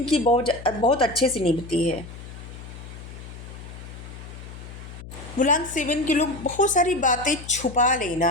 बहुत बहुत अच्छे से निभती है। मूलांक 7 के लोग बहुत सारी बातें छुपा लेना,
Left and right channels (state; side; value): noise; left; hum, 13 dB below the sound